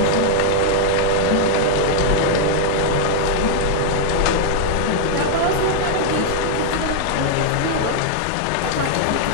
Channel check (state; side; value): different; both; correlation -0.01